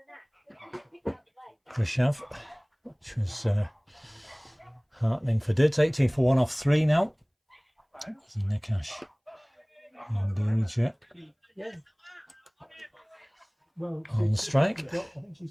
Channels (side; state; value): both; identical; correlation 1.00